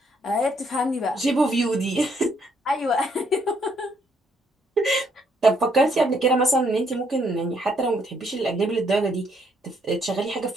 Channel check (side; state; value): both; normal; correlation 0.70